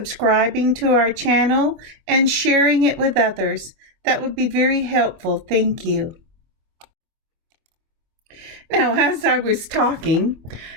to our channel and sharing it with others. That would be very helpful. Thank you. Now, as I was talking,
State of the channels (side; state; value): left; late; 24 ms